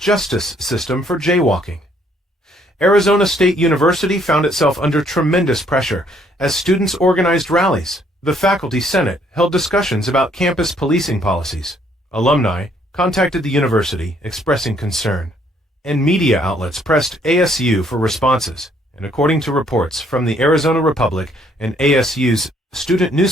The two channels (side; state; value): both; normal; correlation 0.66